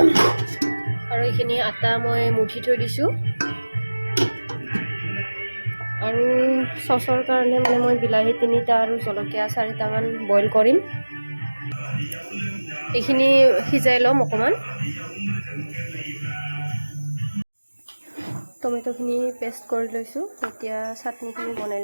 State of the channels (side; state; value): both; inverted; correlation -1.00